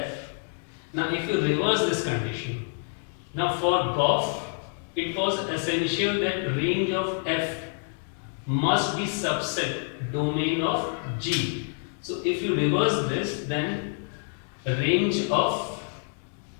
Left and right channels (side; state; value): right; silent; 60 dB below the other